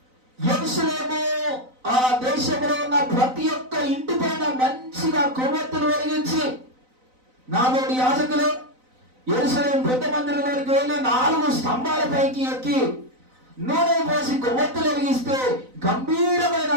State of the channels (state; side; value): late; left; 4.0 ms